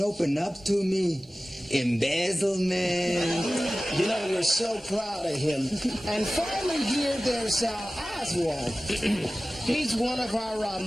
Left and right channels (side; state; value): both; normal; correlation 0.96